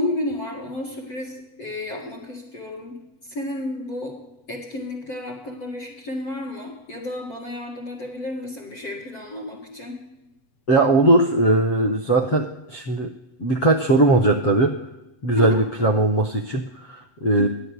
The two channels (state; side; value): late; right; 8.0 ms